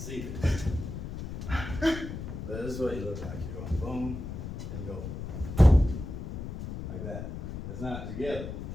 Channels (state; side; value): noise; left; rumble, 7 dB below the sound